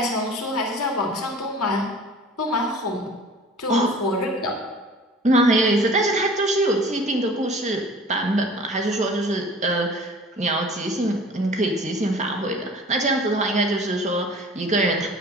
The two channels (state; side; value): normal; both; correlation 0.45